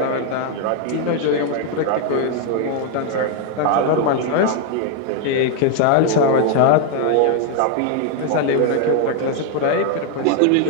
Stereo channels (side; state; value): both; different; correlation 0.01